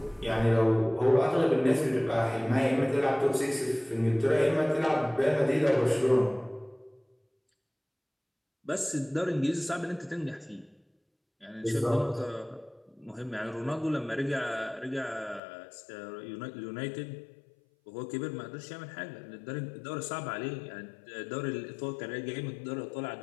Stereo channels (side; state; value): right; drops out; at 15.4 s